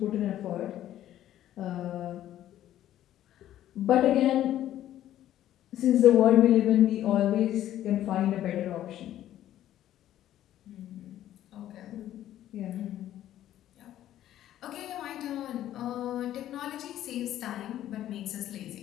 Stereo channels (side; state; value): right; quieter; 12.4 dB